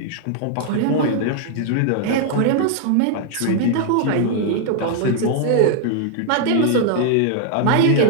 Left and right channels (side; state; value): both; different; correlation 0.00